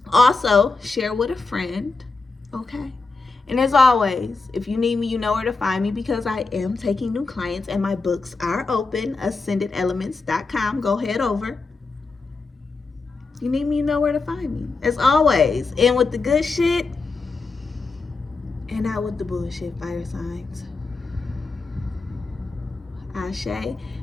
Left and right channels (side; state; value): right; quieter; 3.9 dB